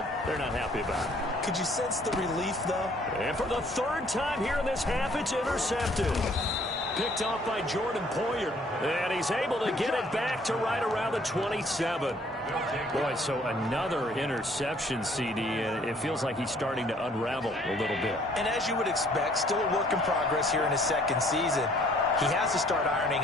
they're not happy about it. Could you sense the relief, though? And for the 3rd time here in this half, it's intercepted. Picked off by Jordan Poyer. And he's able to get it back to right around the 27. Boy, so another interception, CD, and it feels like he's starting to unravel a little bit. And as you would expect, still a work in progress here in his 2nd season. He has to start ironing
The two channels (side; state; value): both; normal; correlation 0.60